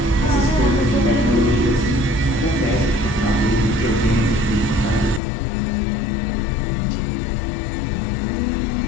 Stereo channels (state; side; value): drops out; right; at 5.2 s